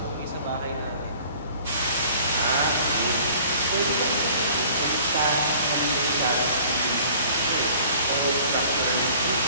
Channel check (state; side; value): inverted; both; correlation -0.50